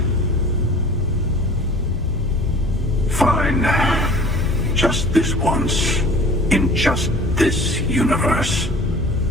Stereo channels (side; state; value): both; normal; correlation 0.45